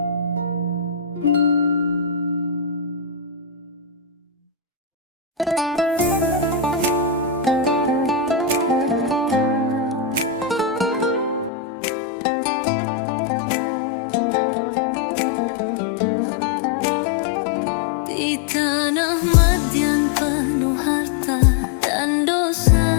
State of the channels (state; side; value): drops out; right; at 11.5 s